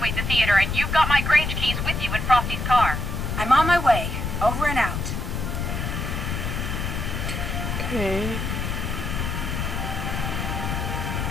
the theater, and you've got my Grange keys with you in Frosty's car. I'm on my way. Over and out. okay.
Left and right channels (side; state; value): left; noise; rumble, 2 dB below the sound